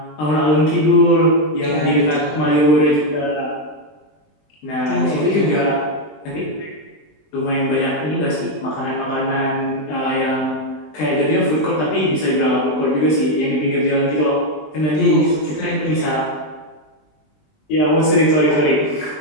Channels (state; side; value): late; right; 20 ms